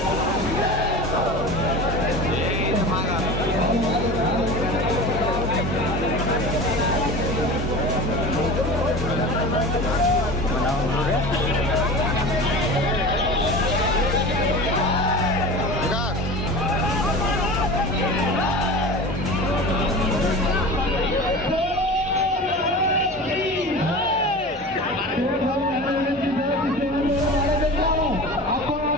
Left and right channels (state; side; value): normal; both; correlation 0.33